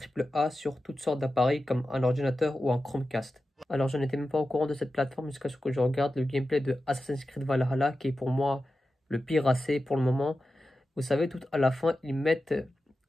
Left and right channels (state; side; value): normal; both; correlation 0.92